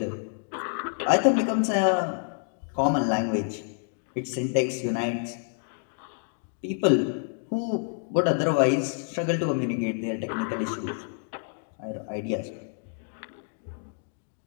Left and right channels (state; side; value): silent; right; digital silence